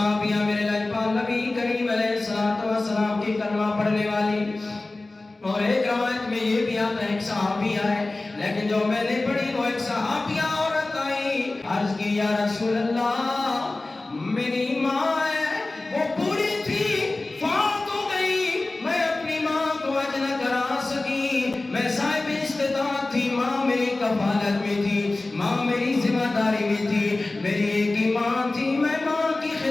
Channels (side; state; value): right; quieter; 3.1 dB